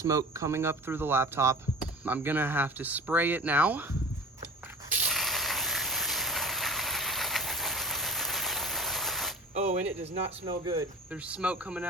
coming up through the laptop. I'm gonna have to spray it now. Oh, and it does not smell good. There's smoke coming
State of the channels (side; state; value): both; normal; correlation 0.40